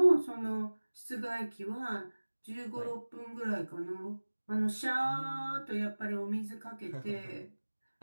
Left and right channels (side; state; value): both; inverted; correlation -1.00